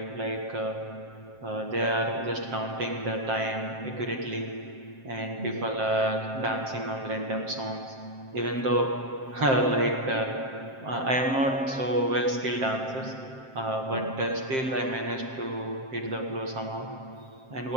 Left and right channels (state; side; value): late; left; 7.6 ms